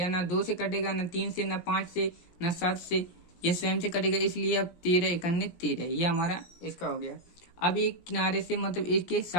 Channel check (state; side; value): late; right; 17 ms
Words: ना 2 से कटेगा, ना 3 से, ना 5 से, ना 7 से, यह स्वयं से कटेगा, इसलिए अब 13 इकन्ने 13, ये हमारा इसका हो गया। अब एक किनारे से मतलब इसके